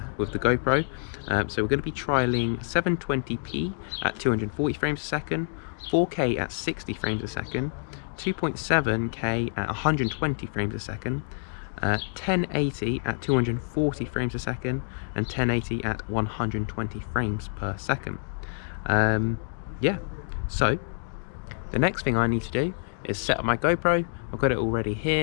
GoPro. So we're going to be trialing 720p at 240 frames a second, 4K at 60 frames a second, 2.7K at 120 frames a second, 1080 at 240 frames a second, and 1080 at 120 frames per second. Yeah, so the next thing I need to do is set up my GoPro. I've got it already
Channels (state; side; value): silent; right; digital silence